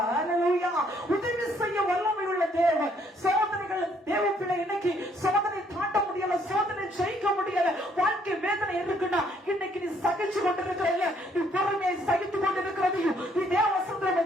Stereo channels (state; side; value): normal; both; correlation 0.67